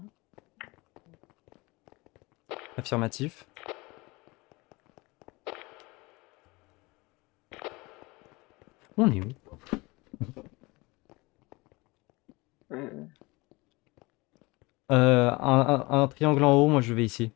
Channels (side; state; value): right; quieter; 23.9 dB